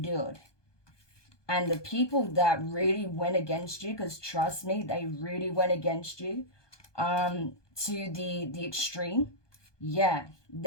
And the people that really went against you, because trust me, they really went against you to the extreme. Yeah,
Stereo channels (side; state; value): right; late; 1.2 ms